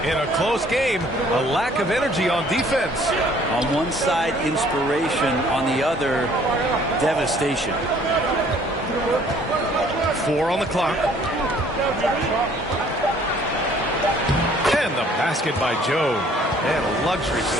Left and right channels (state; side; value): normal; both; correlation 0.58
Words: in a close game, a lack of energy on defense. On one side, inspiration. On the other, devastation. 4 on the clock. And the basket by Joe. And a luxury for